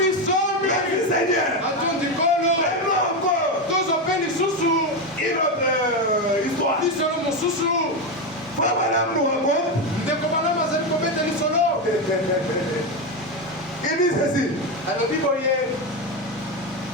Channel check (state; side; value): normal; both; correlation 0.12